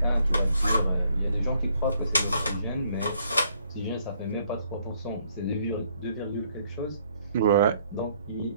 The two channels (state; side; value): inverted; both; correlation -0.67